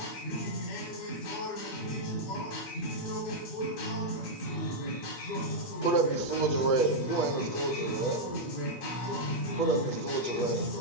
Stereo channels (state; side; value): late; right; 8.3 ms